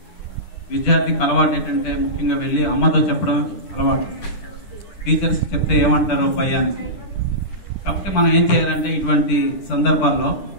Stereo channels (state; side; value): late; right; 10 ms